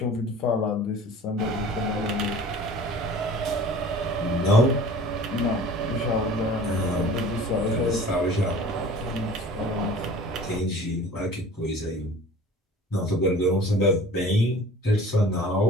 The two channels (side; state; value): both; normal; correlation 0.44